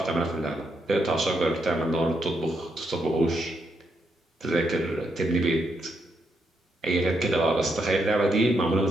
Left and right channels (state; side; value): normal; both; correlation 0.79